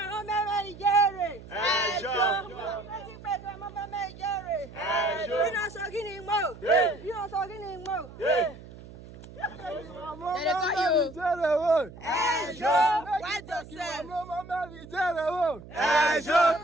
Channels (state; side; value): noise; right; hum, 17 dB below the sound